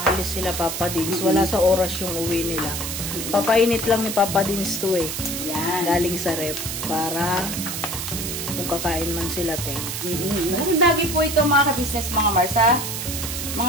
sila Papa Dins, wala sa oras yung uwi nila. Papainit lang ni Papa Dins to eh. Yan. Galing sa rep para kung kakain man sila, te. Malaking bagay po ito mga ka-business, mga Marsa.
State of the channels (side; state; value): right; noise; hiss, 4 dB below the sound